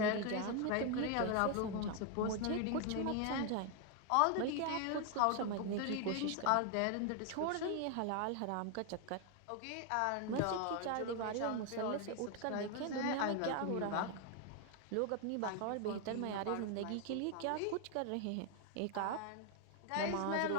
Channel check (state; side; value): different; both; correlation 0.01